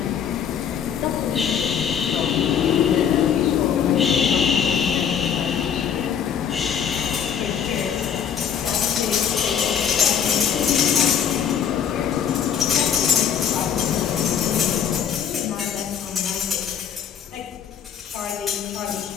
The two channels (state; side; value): quieter; right; 8.2 dB